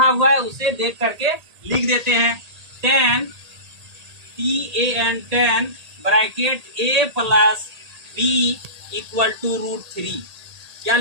हुआ है उसे देख करके लिख देते हैं। tan tan bracket a plus B equal to √3। क्या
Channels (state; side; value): late; left; 1.8 ms